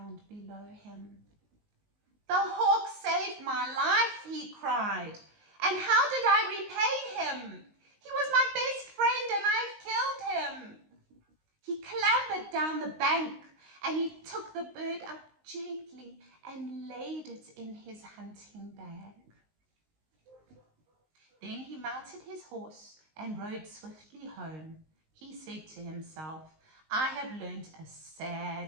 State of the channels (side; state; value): left; late; 19 ms